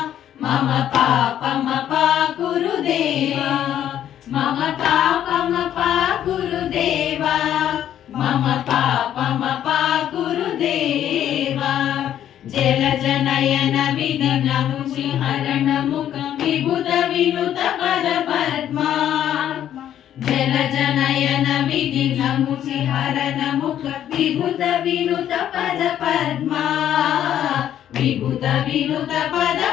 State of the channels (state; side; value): quieter; right; 10.8 dB